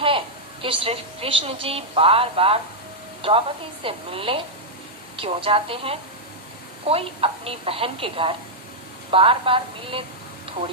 कि श्री कृष्ण जी बार बार द्रौपदी से मिलने क्यों जाते हैं? कोई अपनी बहन के घर बार बार मिलने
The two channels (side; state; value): both; normal; correlation -0.05